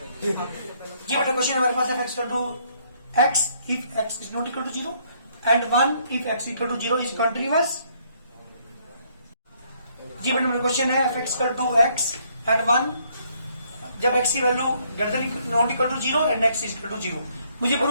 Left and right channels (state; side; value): inverted; both; correlation -0.67